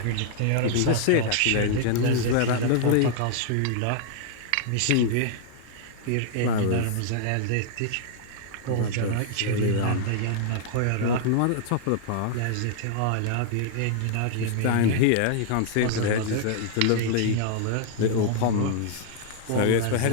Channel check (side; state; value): both; different; correlation -0.01